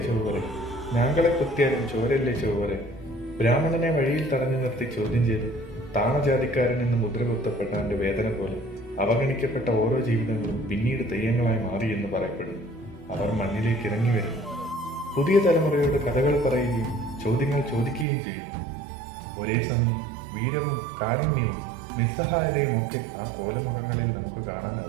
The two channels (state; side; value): drops out; left; at 18.1 s